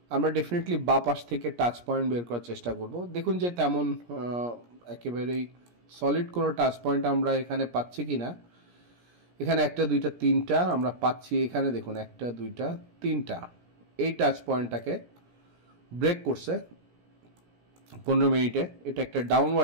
আমরা ডেফিনেটলি বা পাশ থেকে টাচ পয়েন্ট বের করার চেষ্টা করব। দেখুন যে তেমন একেবারেই সলিড কোনো টাচ পয়েন্ট আমরা এখানে পাচ্ছি কি না। এখানে 1, 2, 3টা আমরা পাচ্ছি, এখানে দেখুন 1, 2, 3টা এই টাচ পয়েন্টটাকে ব্রেক করছে 15 মিনিটে। এটা একটা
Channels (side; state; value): left; late; 17 ms